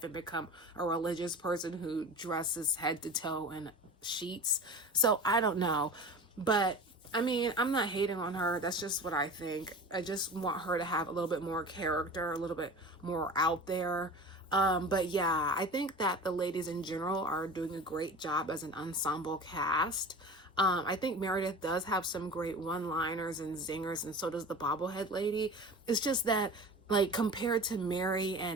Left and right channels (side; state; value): both; normal; correlation 0.35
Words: and become a religious person who dresses head to toe in sheets. So I don't know, but I mean, I'm not hating on her. That's just what I think. I just want her to have a little bit more character, a little bit more out there. But yeah, I think that the ladies in general are doing a great job as an ensemble cast. I think Meredith does have some great one-liners and zingers, and so does the bobblehead lady. It's just that, like, compared to Mary